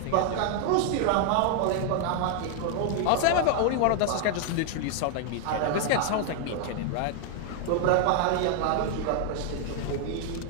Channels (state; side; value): different; both; correlation 0.00